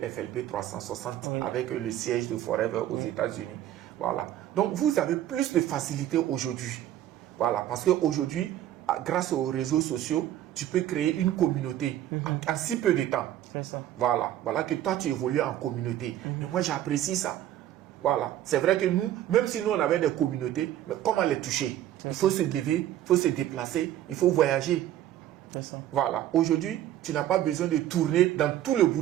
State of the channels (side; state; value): left; quieter; 12.4 dB